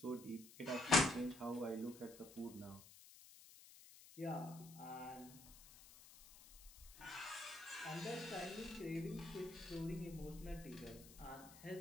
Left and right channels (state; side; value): noise; left; hiss, 18 dB below the sound